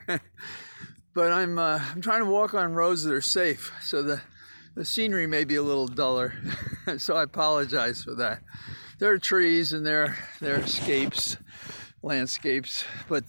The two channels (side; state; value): both; inverted; correlation -1.00